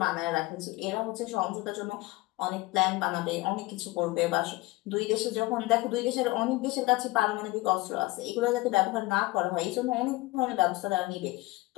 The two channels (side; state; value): right; quieter; 21.0 dB